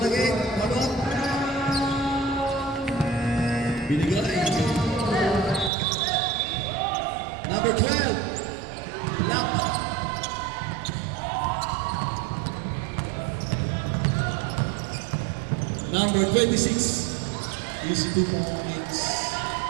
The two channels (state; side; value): drops out; left; at 5.7 s